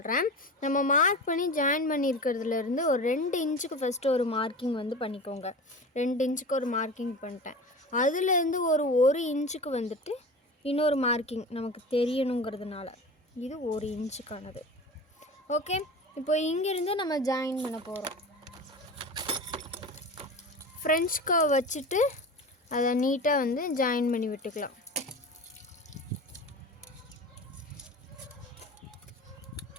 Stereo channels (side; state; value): both; normal; correlation 0.32